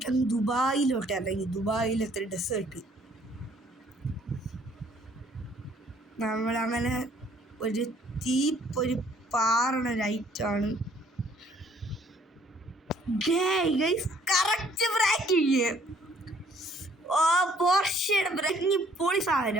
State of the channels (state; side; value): normal; both; correlation 0.61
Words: ദുബായിലോട്ട് ഇറങ്ങി. ദുബായിലത്തെ ഡെസേർട്ട് നമ്മളങ്ങനെ ഒരു ഒരു പാറണ ലൈറ്റാണ്. Correct braking. ഓ പോർഷയുടെ ബ്രേക്കിങ് പൊളി